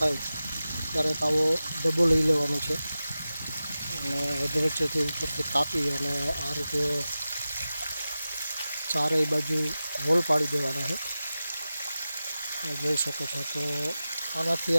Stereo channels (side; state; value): both; inverted; correlation -0.94